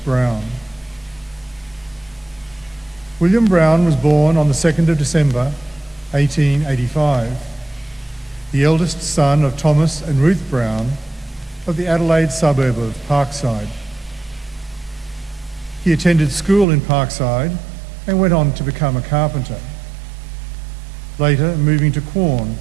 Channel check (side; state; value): left; drops out; at 16.7 s